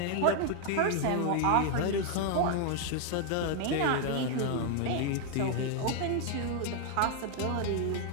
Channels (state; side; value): different; both; correlation 0.00